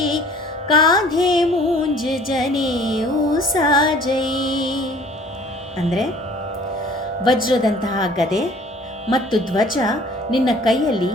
कांधे मूंज जनेऊ साजೈ. ಅಂದರೆ ವಜ್ರದಂತಹ ಗದೆ ಮತ್ತು ಧ್ವಜ ನಿನ್ನ ಕೈಯಲ್ಲಿ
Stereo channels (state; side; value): normal; both; correlation 0.52